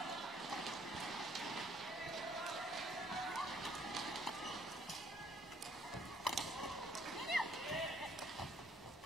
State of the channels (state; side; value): normal; both; correlation 0.65